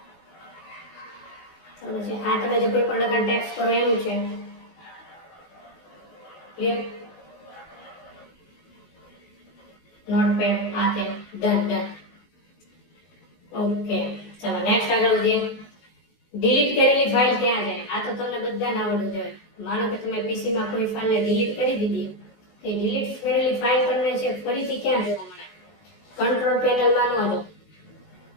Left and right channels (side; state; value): right; late; 18 ms